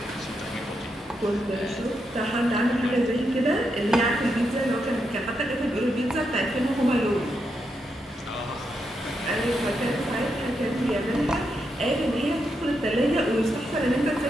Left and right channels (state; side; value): normal; both; correlation 0.83